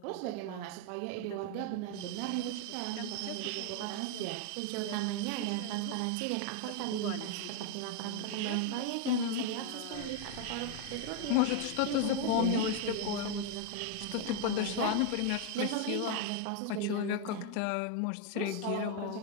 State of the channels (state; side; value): different; both; correlation 0.00